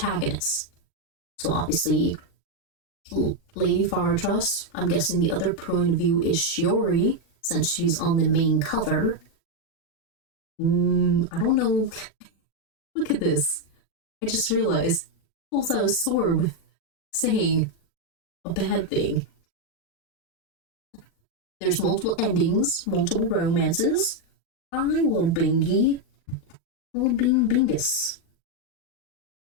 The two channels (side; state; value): right; late; 40 ms